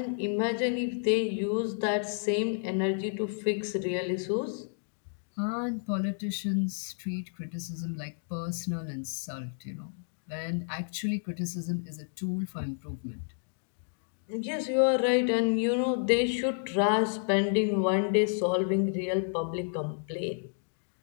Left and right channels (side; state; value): right; silent; digital silence